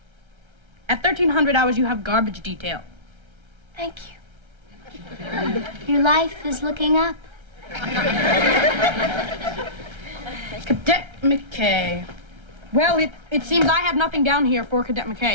At 1,300 hours, you have garbage detail. Thank you. Your life is looking up. Cadet McKay. Well, it seems I have nothing down here for Cadet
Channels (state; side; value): late; left; 1.3 ms